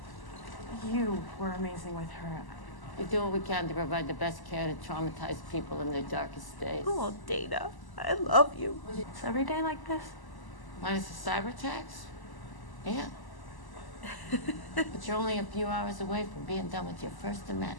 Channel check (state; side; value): late; right; 1.0 ms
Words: You were amazing with her. We do what we can to provide the best care to traumatized people in their darkest days. Oh, Dana, I love you. It's every day like this? Minus the cyber attacks? Yeah. But you're only a few hours away from being done with your first of